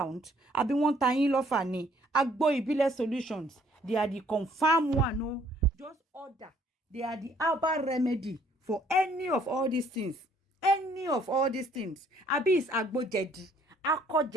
Àbí wọ́n ta yín lọ́fà ni? Agbo Ìbílẹ̀ solutions. They are the confirmed one. No, just order. They are the herbal remedy for any of all these things. Any of all these things. Àbí is agbo jẹ̀dí, akọ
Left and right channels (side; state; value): both; normal; correlation 0.63